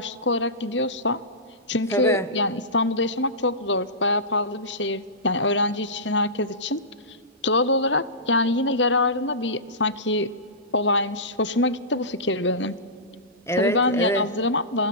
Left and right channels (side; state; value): both; normal; correlation -0.19